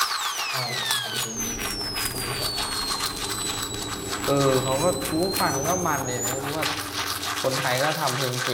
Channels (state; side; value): identical; both; correlation 1.00